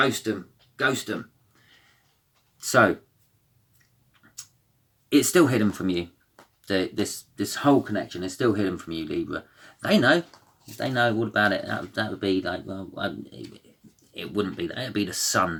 So, it's still hidden from you. This whole connection is still hidden from you, Libra. They know all about it. That would be like, well, it wouldn't be that. It would be the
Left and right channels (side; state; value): both; identical; correlation 1.00